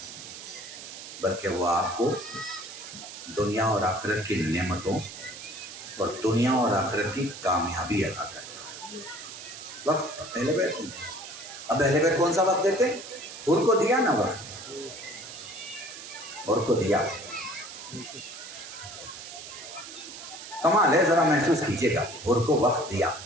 بلکہ وہ آپ کو دنیا اور آخرت کی نعمتوں اور دنیا اور آخرت کی کامیابی عطا کرتا ہے۔ وقت اہل بیت نہیں۔ اب اہل بیت کون سا وقت دیتے؟ حور کو دیا نا وقت، حور کو دیا، کمال ہے، ذرا محسوس کیجئے گا، حور کو وقت دیا۔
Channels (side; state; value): right; noise; hiss, 12 dB below the sound